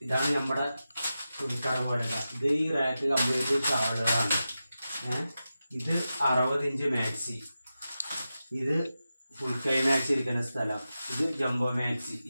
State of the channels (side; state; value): both; inverted; correlation -0.92